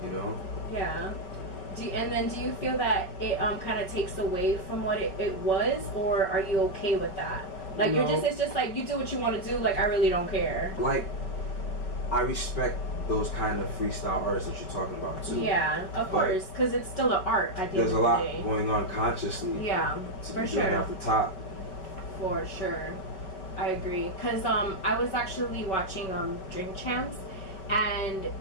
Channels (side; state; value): right; late; 5.4 ms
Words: You know? Yeah. And then do you feel that it kind of takes away from what it was, or are you okay with that? Like no. it's just like you do what you want to do, like I really don't care. Like, I respect those kind of freestyle artists that you're talking about too. Yeah, of course, because it's still an art at the end of the day. There's a lot going on consciously. Yeah, for sure. Off the top. For sure, I agree. Because I was actually watching Drink Champs, and